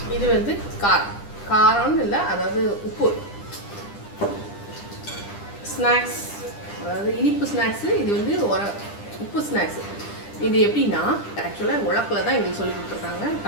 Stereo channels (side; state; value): right; late; 10 ms